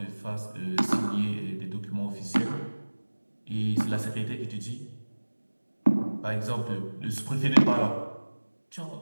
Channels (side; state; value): both; inverted; correlation -1.00